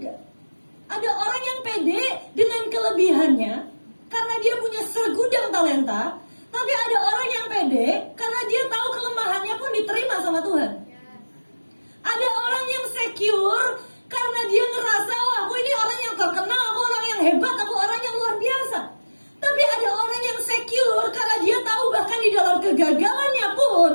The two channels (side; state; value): both; inverted; correlation -1.00